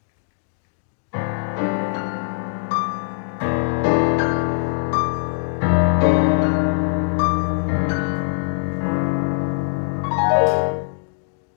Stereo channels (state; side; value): silent; right; digital silence